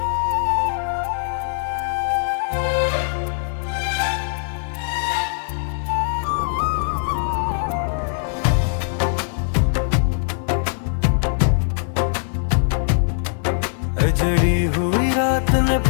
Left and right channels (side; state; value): right; silent; digital silence